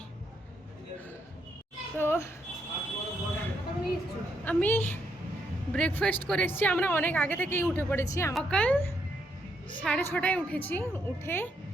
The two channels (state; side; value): normal; both; correlation 0.76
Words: তো আমি ব্রেকফাস্ট করে এসেছি। আমরা অনেক আগে থেকেই উঠে পড়েছি। সকাল 6:30টায় উঠেছি। উঠে